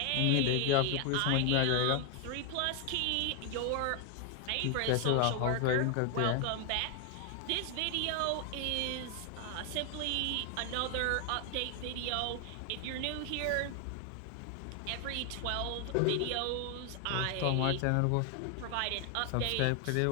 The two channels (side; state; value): both; different; correlation 0.00